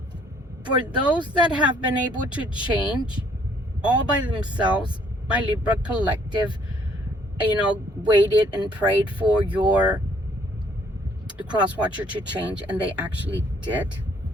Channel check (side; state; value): both; normal; correlation 0.63